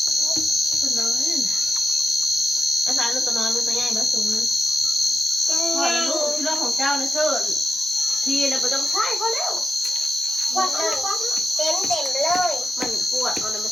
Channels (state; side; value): normal; both; correlation 0.88